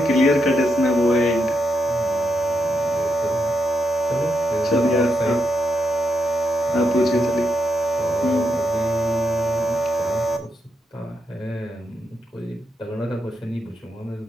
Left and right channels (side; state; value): both; normal; correlation 0.82